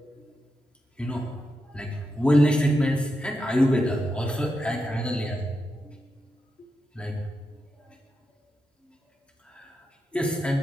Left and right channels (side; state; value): both; normal; correlation 0.86